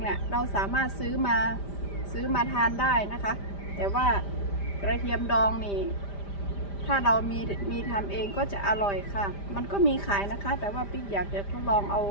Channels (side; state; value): right; late; 5.0 ms